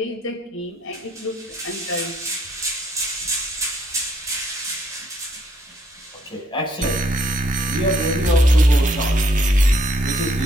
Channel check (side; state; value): both; normal; correlation 0.69